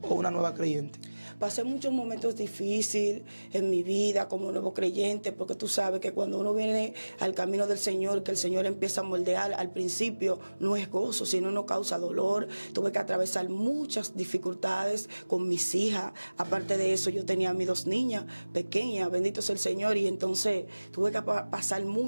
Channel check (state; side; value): inverted; both; correlation -1.00